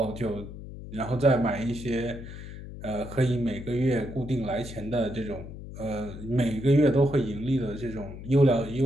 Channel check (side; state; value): left; noise; hum, 12 dB below the sound